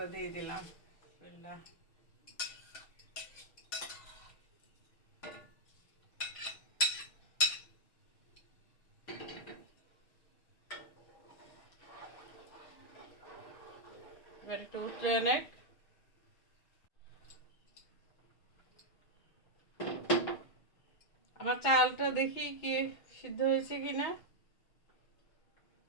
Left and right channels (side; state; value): right; late; 6.1 ms